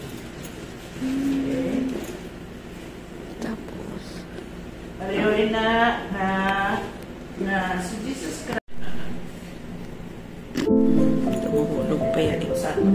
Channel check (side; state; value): both; identical; correlation 1.00